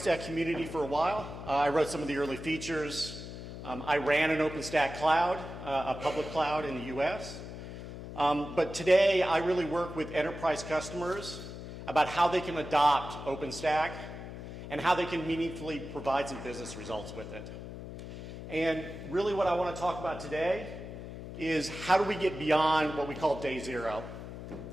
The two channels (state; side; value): noise; left; hum, 10 dB below the sound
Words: community for a while. I wrote some of the early features. I ran an OpenStack cloud, a public cloud in the US. But today I really work with enterprise customers about how they can adopt OpenStack and how they can meaningfully provide some business results with it. And really what I want to talk about today is how do we get beyond what we call day zero.